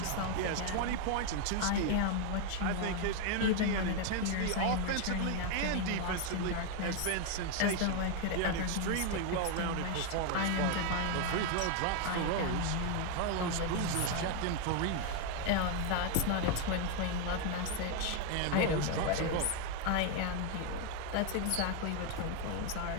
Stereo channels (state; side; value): different; both; correlation 0.01